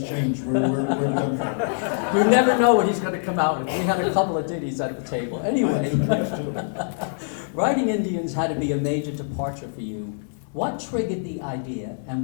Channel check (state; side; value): silent; right; digital silence